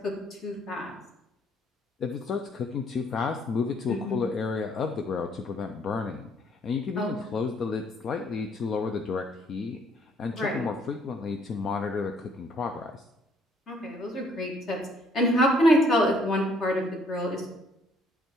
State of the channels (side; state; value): both; normal; correlation 0.64